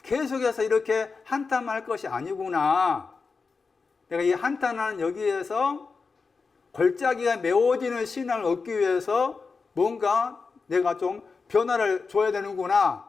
계속해서 이렇게 한탄할 것이 아니구나. 내가 이 한탄하는 여기에서 골짜기가 메워지는 신앙을 얻기 위해서 뭔가 내가 좀 변화를 줘야 되는구나.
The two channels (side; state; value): right; quieter; 4.7 dB